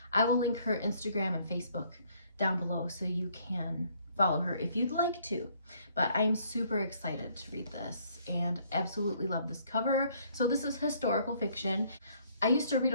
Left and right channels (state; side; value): inverted; both; correlation -0.64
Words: I will link her Instagram and Facebook down below so you can follow her if you'd like to. But I'm super excited to read this and absolutely love this cover. So this is historical fiction. I used to read